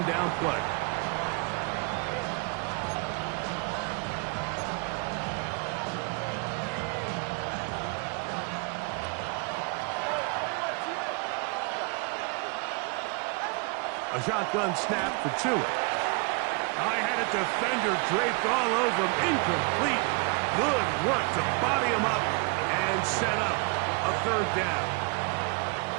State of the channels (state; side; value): quieter; left; 32.7 dB